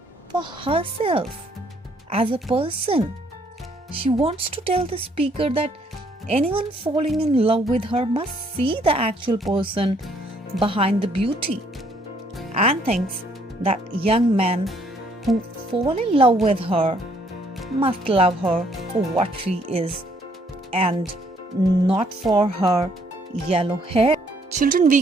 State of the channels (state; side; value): normal; both; correlation 0.66